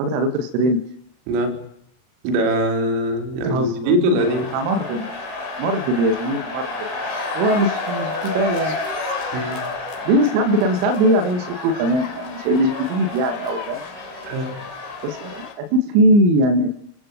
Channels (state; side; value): late; left; 39 ms